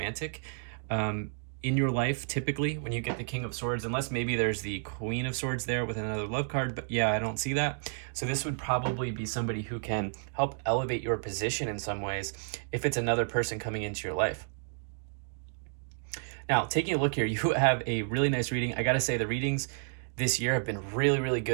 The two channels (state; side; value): silent; left; digital silence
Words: in your life, typically, when you get the King of Swords, unless maybe there's the Queen of Swords there with another love card, but yeah, I don't see that. So this would probably be somebody who can help elevate your position in some ways if it's another person coming into your life. Now, taking a look here, you have a really nice reading. I gotta say, the readings this year have been really, really